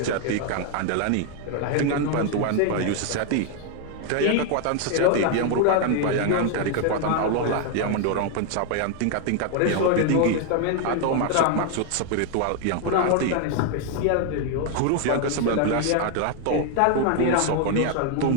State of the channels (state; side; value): different; both; correlation 0.00